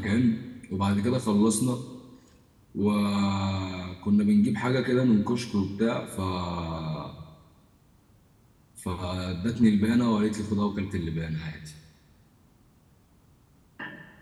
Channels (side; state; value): both; identical; correlation 1.00